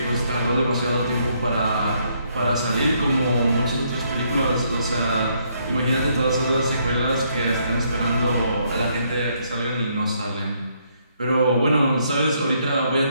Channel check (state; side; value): inverted; both; correlation -0.72